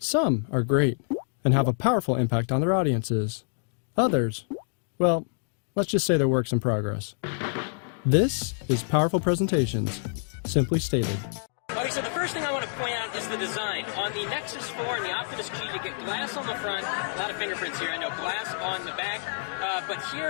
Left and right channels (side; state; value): right; silent; digital silence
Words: are great and have a powerful impact on their audiences. Others, well, let's just say they're works in progress. This is Powerful Presentations, simply stated. Okay, so the first thing I want to point out is the design. On the Nexus 4 and the Optimus G, you get glass on the front, a lot of fingerprints here, I know, glass on the back, but